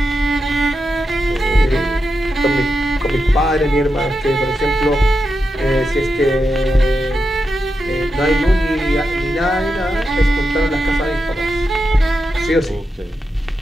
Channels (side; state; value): both; normal; correlation 0.88